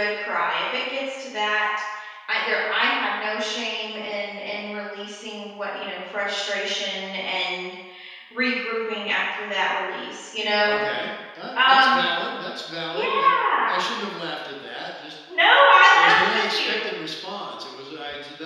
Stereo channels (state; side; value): identical; both; correlation 1.00